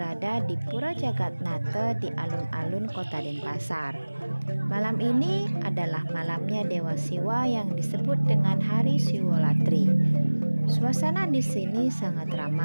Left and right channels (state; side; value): inverted; both; correlation -1.00